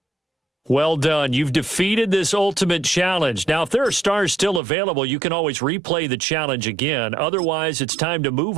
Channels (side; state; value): left; drops out; at 4.6 s